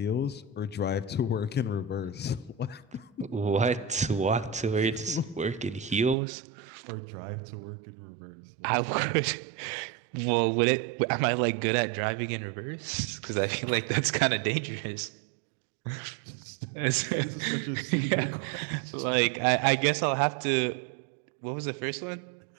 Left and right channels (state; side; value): drops out; left; at 6.2 s